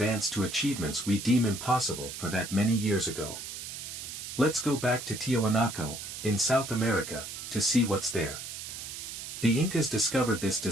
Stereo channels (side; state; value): right; noise; hiss, 9 dB below the sound